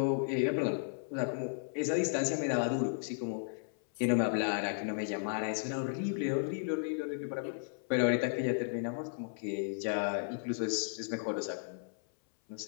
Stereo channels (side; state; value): right; silent; 55 dB below the other